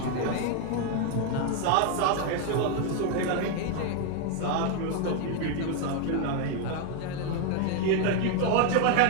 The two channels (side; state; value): both; different; correlation 0.01